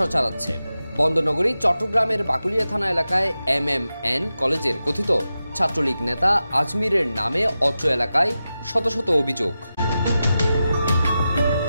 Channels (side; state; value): both; inverted; correlation -0.92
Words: চালাচ্ছে। বন্দরনগরী চট্টগ্রামের বাকুলিয়া থানা এলাকায় MMN কলেজের কথিত ছাত্রলীগ নেতা আজমিরের নামে অত্র এলাকায় শত শত অভিযোগ।